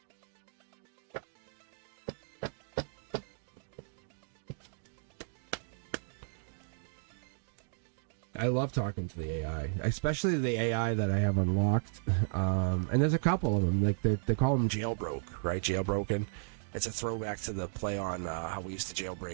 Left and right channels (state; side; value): silent; left; digital silence